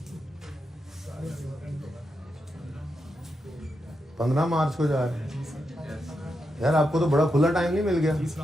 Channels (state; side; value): normal; both; correlation 0.85